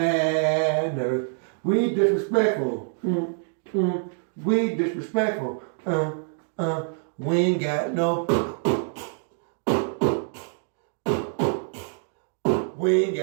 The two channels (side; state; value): left; silent; 60 dB below the other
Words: We disrespectful. We disrespectful. We ain't got no. We ain't